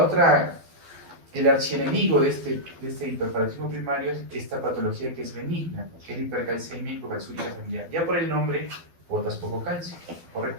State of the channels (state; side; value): late; left; 12 ms